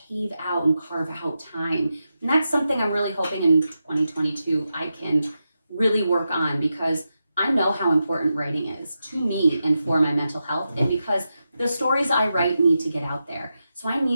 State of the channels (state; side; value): inverted; both; correlation -0.89